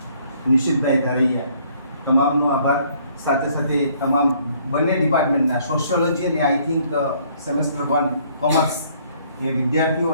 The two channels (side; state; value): both; inverted; correlation -0.62